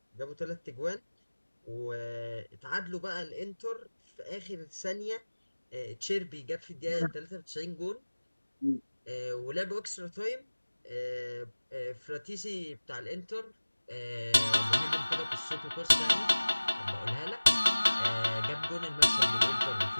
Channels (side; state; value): both; inverted; correlation -1.00